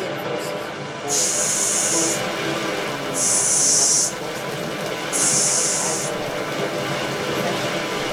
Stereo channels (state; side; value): identical; both; correlation 1.00